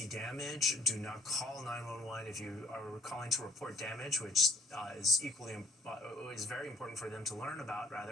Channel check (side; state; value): both; normal; correlation 0.61